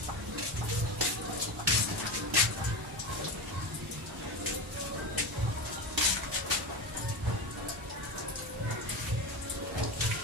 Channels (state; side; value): normal; both; correlation 0.21